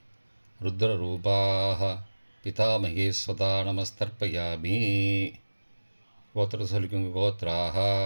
ருத்ரரூபாஹ பிதாமகி ஸ்வதா நமஸ்தர்ப்பயாமி. கோத்திரத்தை சொல்லிக்கோங்கோ. கோத்ராஹா.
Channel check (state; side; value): inverted; both; correlation -1.00